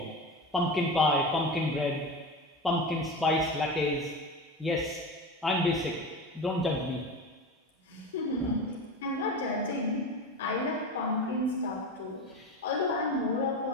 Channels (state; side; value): normal; both; correlation 0.26